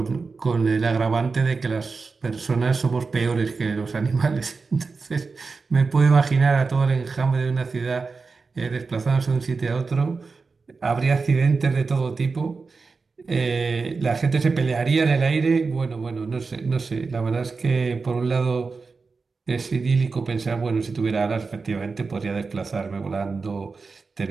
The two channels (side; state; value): left; quieter; 4.4 dB